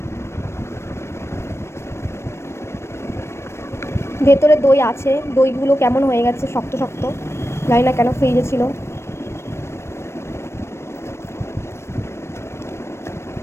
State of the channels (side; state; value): right; late; 0.13 ms